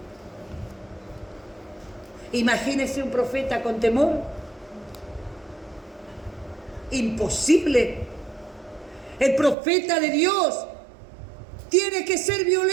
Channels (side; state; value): left; drops out; at 9.6 s